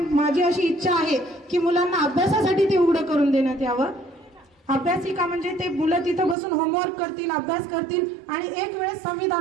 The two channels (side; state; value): left; drops out; at 6.4 s